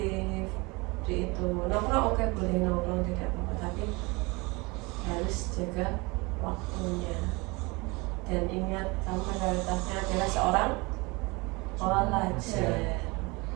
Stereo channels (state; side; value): quieter; left; 25.9 dB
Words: Di itu nongkrong oke, boleh nongkrong, tidak apa-apa, tapi harus jaga waktunya dan ingat kamu prioritasnya adalah seorang pelajar.